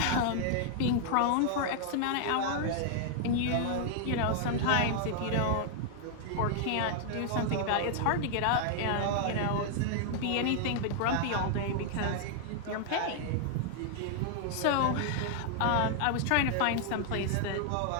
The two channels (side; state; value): both; different; correlation -0.01